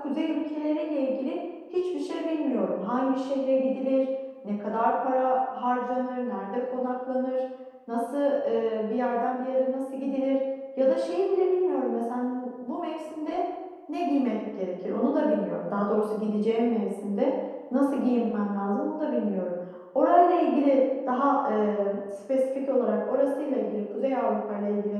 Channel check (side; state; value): both; identical; correlation 1.00